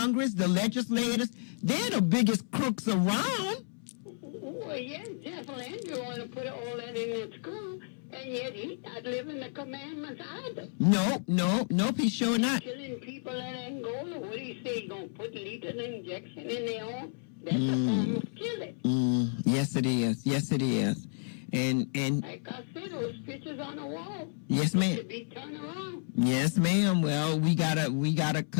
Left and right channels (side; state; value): right; silent; 57 dB below the other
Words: the legislators. They're the biggest crooks around. Well, yes, Jeff Landry want to put all that in the school, and yet he's not living the commandments either. Nope, he's sure not. Killing people in Angola. What do you say? He's going to put lethal injection in their arm? That's a form of killing. Yes, it is. Yes, it is. And like I said, those pictures on the wall. Yes, ma'am. Should be turned around. Yes, ma'am. Well, we gotta